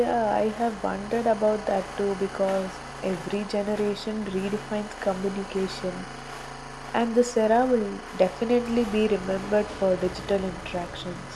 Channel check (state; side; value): identical; both; correlation 1.00